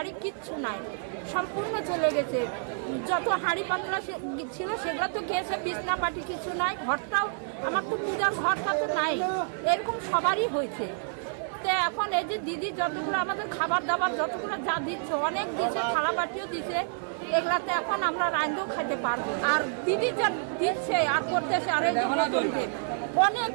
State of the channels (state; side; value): silent; left; digital silence